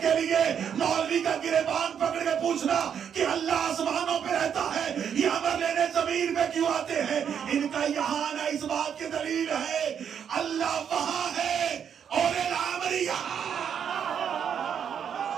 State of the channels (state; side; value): quieter; left; 8.1 dB